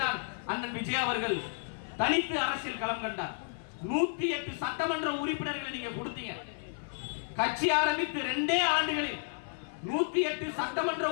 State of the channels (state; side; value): silent; right; 56 dB below the other